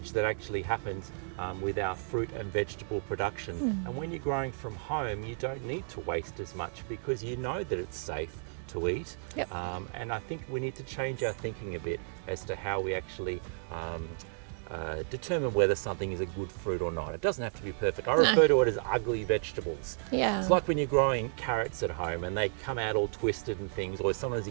that actually happens with our fruit and vegetable production. And when you're growing from home, you don't need to waste as much because you know that it's safe to eat. And I think we need to change our thinking a bit as to how we actually determine whether something is a good fruit or not. It doesn't have to be perfect. I refer to it as ugly vegetables. Yeah. It's like when you're growing carrots at home and they come out all twisted and things, or sometimes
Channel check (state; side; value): silent; left; 56 dB below the other